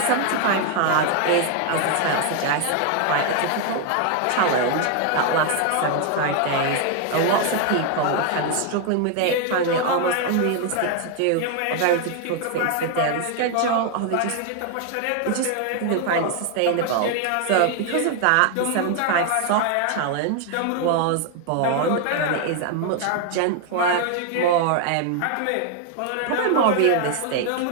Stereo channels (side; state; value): both; different; correlation 0.00